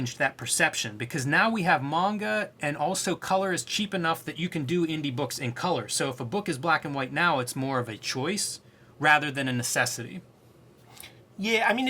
that perception, because now we have manga, and also color is cheap enough that you can do indie books in color. So if a book is black and white now, it's more of a choice rather than a necessity. Yeah, I mean,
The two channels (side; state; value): both; identical; correlation 1.00